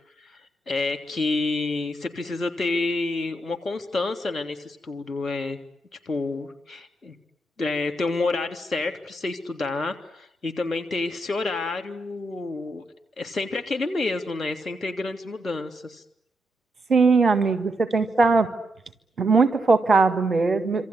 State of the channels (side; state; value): both; normal; correlation 0.81